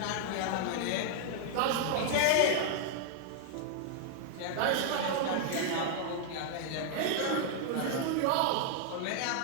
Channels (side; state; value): both; different; correlation 0.00